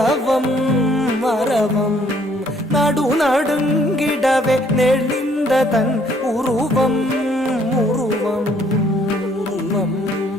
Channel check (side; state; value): both; normal; correlation 0.64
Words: அரவம். நடு நடுங்கிடவே நெளிந்ததன் உருவம் உருவம் உருவம்.